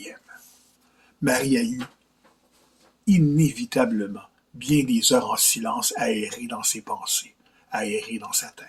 Marie a eu inévitablement bien des heures en silence à errer dans ses pensées, à errer dans sa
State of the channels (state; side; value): identical; both; correlation 1.00